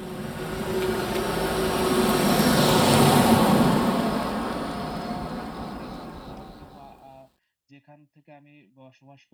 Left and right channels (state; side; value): identical; both; correlation 1.00